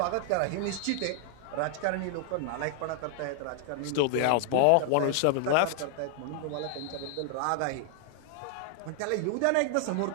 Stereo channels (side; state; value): both; different; correlation 0.00